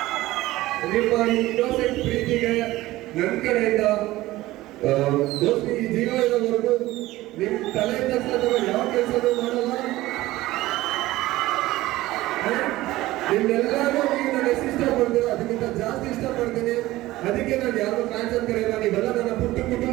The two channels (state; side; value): quieter; left; 17.3 dB